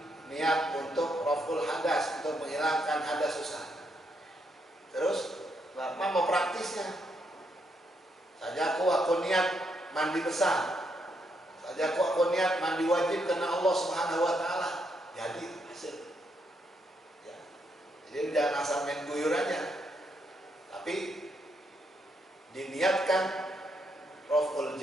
niat untuk raf'ul hadas, untuk menghilangkan hadas susah. Terus apa mau praktisnya? Saja aku niat mandi besar. Saja aku niat mandi wajib karena Allah Subhanahu wa taala. Jadi hasil. Ya. Jadi jangan asal main guyur aja. Tapi niatkan raf'ul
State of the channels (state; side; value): normal; both; correlation 0.77